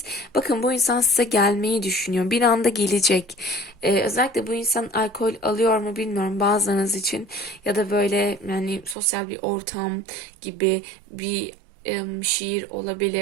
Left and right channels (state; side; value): drops out; left; at 9.0 s